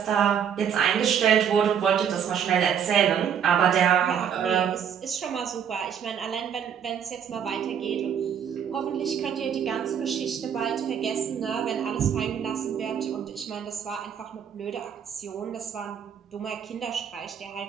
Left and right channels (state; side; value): quieter; left; 8.2 dB